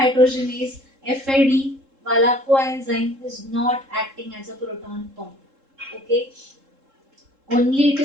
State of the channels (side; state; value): left; late; 3.7 ms